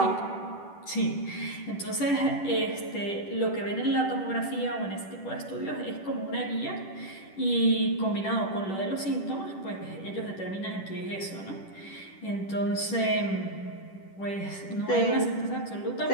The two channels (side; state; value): right; late; 10 ms